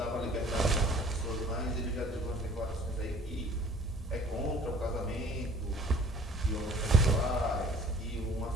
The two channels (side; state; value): both; normal; correlation 0.52